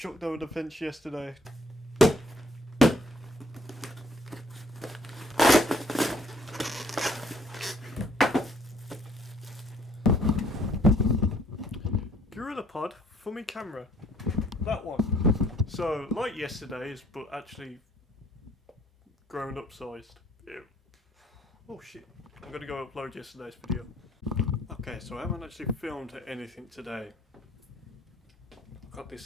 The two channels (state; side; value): normal; both; correlation 0.62